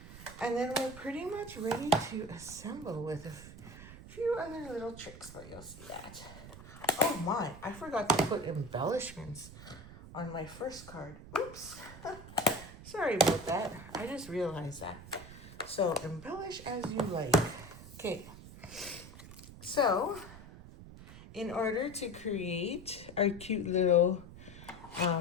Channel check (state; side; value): noise; right; rumble, 15 dB below the sound